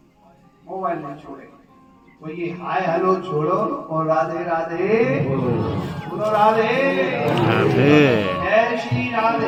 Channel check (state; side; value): identical; both; correlation 1.00